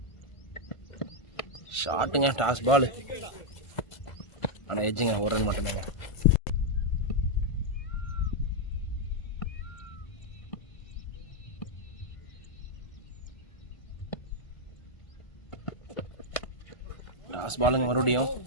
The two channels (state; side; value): late; right; 1.4 ms